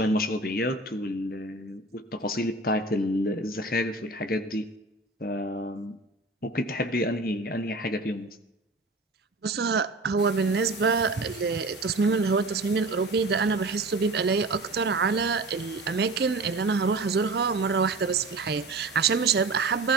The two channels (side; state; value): left; quieter; 3.1 dB